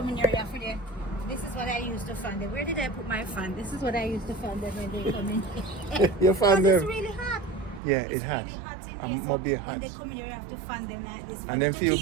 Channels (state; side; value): drops out; left; at 7.8 s